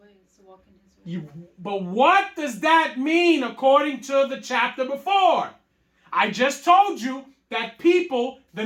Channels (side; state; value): both; identical; correlation 1.00